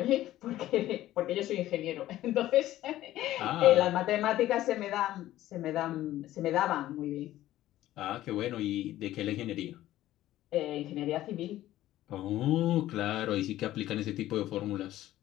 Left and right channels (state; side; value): quieter; right; 14.4 dB